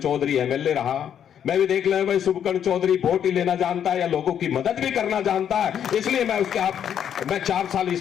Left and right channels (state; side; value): quieter; right; 9.1 dB